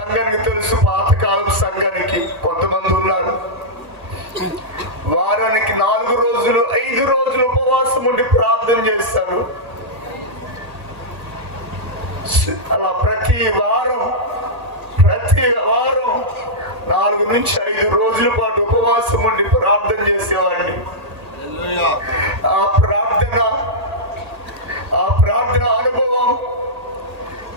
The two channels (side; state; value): left; late; 1.8 ms